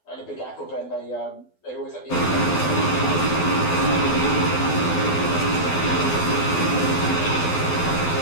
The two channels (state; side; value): late; right; 12 ms